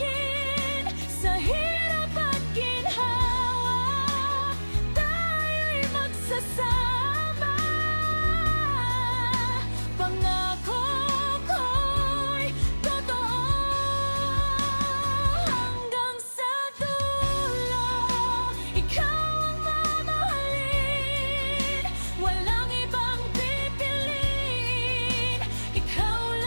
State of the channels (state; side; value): inverted; both; correlation -1.00